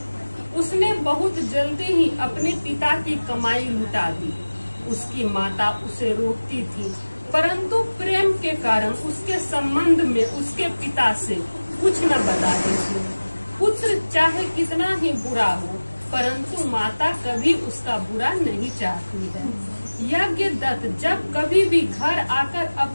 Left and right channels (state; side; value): inverted; both; correlation -1.00